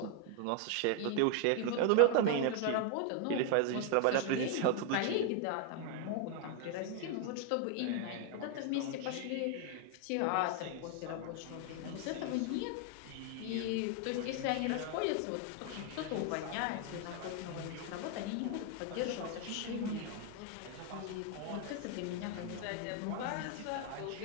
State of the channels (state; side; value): different; both; correlation 0.00